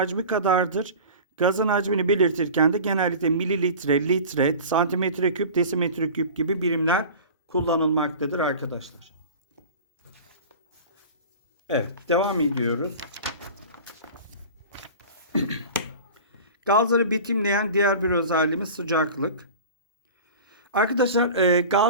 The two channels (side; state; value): both; inverted; correlation -0.37